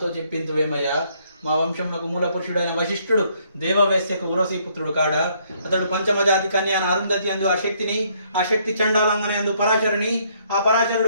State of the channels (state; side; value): inverted; both; correlation -0.68